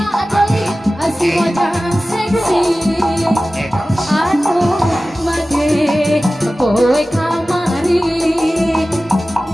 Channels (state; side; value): normal; both; correlation 0.96